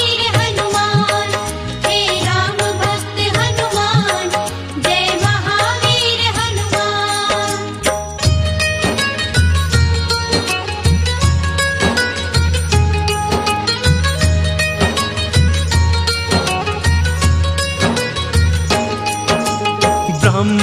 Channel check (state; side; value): identical; both; correlation 1.00